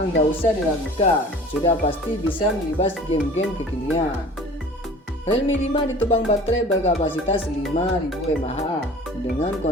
nggak usah diragukan, sudah pasti bisa melibas game-game kekinian. Realme 5 ditopang baterai berkapasitas 5000 mAh dengan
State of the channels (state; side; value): normal; both; correlation 0.44